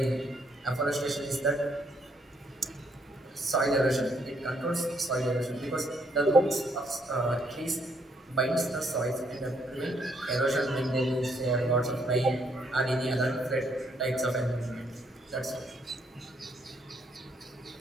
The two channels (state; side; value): normal; both; correlation 0.71